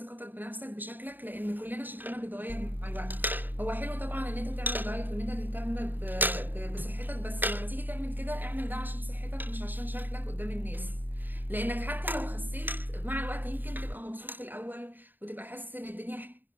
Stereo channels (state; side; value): late; left; 0.090 ms